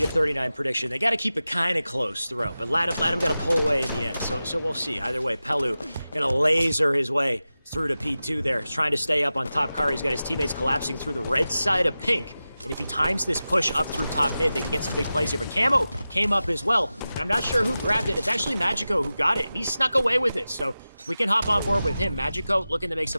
39 prediction, they got to keep it kind of close throughout. But Latham got to pull away in the end. So we'll see. Either way, Pelu going to laser his way through to P2 there. He's trying to stay up on top car. He's got his teammates collapsing through the red side of pink. And if he times this push up through top mid, they can get some big plays here. But Camo came up as well. And I'm not sure who grabbed it. It's actually Magico who got it. He snuck away with it. So if we can hop on board with him, Magico looking to make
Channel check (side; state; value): both; inverted; correlation -0.94